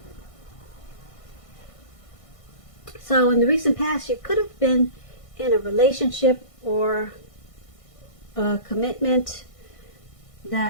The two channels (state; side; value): late; right; 1.5 ms